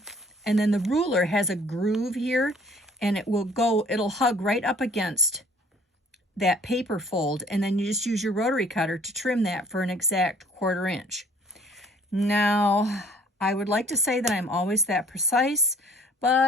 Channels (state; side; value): normal; both; correlation 0.56